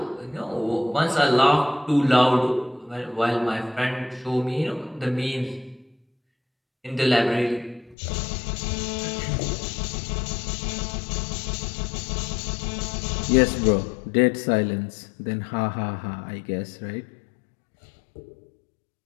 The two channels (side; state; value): right; drops out; at 8.0 s